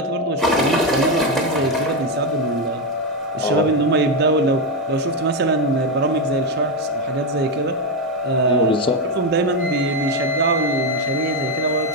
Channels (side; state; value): both; normal; correlation 0.07